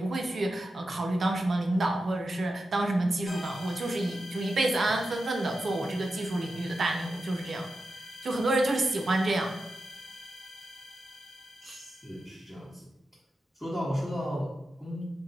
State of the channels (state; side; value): normal; both; correlation 0.90